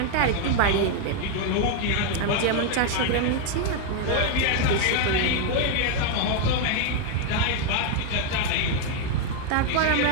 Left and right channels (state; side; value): different; both; correlation 0.01